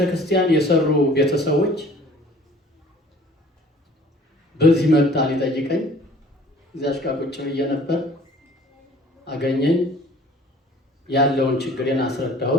የሰሩ ቤተሰቦች በዚህ መጣ ሊጠይቀኝ። እዚያች ጋር ቁጭ ብዬ ነበር። አገኘኝ። ያለውን ችግሬን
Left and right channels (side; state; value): both; normal; correlation 0.51